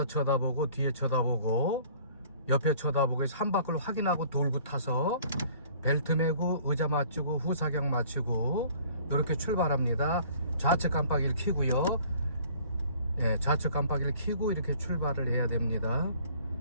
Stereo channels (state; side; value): inverted; both; correlation -0.53